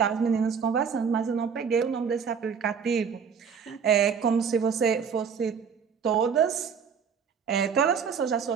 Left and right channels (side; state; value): left; quieter; 6.6 dB